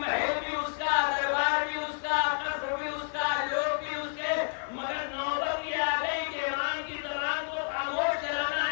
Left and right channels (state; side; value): silent; right; digital silence